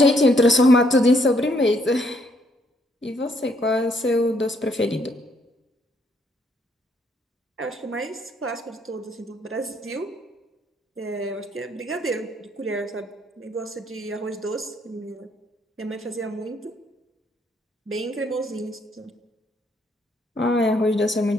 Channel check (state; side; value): normal; both; correlation 0.70